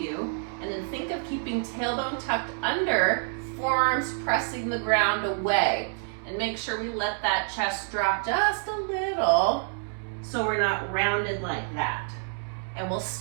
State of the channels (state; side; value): silent; left; digital silence